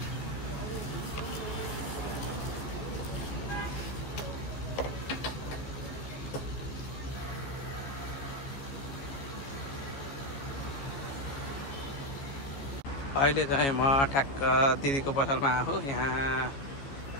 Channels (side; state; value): right; late; 15 ms